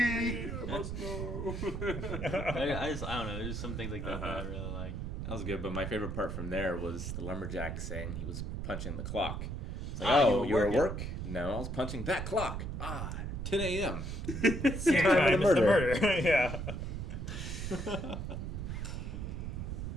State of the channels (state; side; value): noise; right; rumble, 4 dB below the sound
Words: I must know. I don't know. There's some things like that that I really like. That was good, but my favorite part from there was the lumberjack saying he was punching the clock. It's like, you were at working. work? No, I was punching that clock. 10 a.m. Same time as the murder. Yeah.